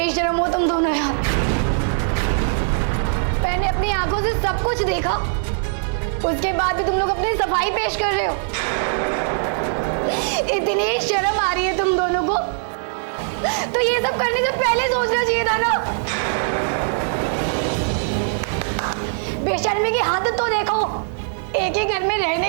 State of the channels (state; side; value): silent; left; digital silence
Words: हो तुम दोनों यार। मैंने अपनी आंखों से सब कुछ देखा, उसके बाद भी तुम लोग अपनी सफाई पेश कर रहे हो। इतनी शर्म आ रही है तुम दोनों को, तो ये सब करने से पहले सोचना चाहिए था ना। बेशर्मी की हद तो देखो, एक ही घर में